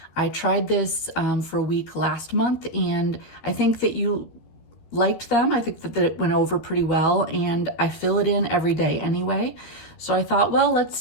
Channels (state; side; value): late; right; 13 ms